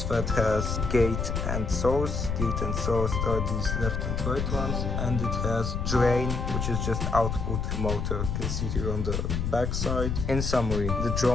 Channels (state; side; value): noise; left; rumble, 1 dB below the sound